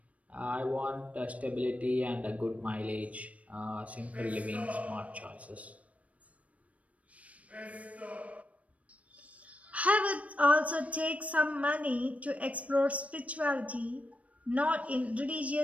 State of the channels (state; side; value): late; left; 0.066 ms